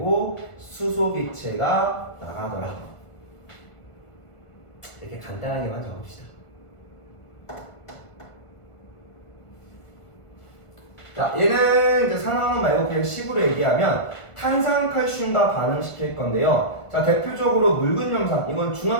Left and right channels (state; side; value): late; right; 1.5 ms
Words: 수소 기체가 나가더라. 이렇게 간단하게만 적읍시다. 자, 얘는 이제 산화환원 말고 그냥 식으로 얘기하면 탄산칼슘과 반응시킬 건데요. 자, 대표적으로 묽은 염산. 이건